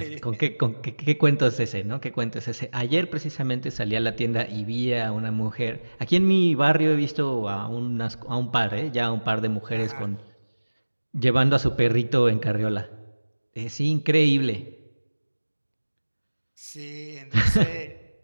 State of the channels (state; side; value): inverted; both; correlation -1.00